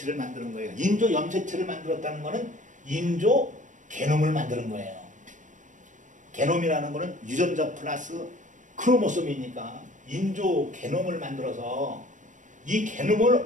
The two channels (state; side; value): late; left; 0.37 ms